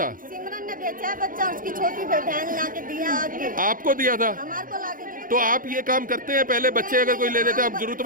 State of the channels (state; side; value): late; left; 0.40 ms